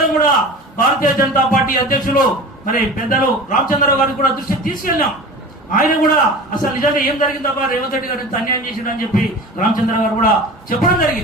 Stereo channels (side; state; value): both; normal; correlation 0.36